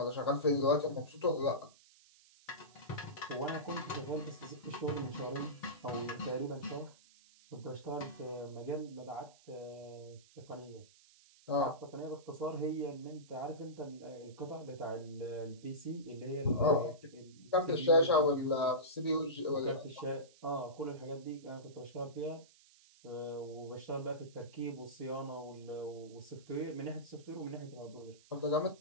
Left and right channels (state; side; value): noise; right; hiss, 25 dB below the sound